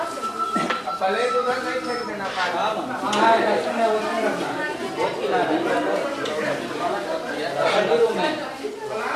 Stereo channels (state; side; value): identical; both; correlation 1.00